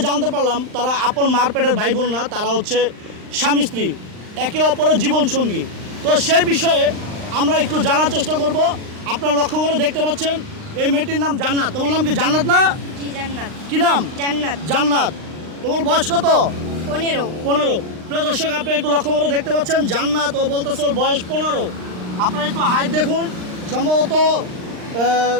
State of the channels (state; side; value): late; left; 39 ms